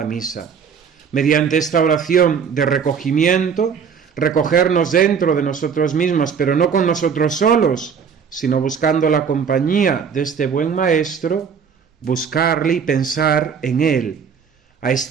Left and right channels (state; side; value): quieter; left; 6.7 dB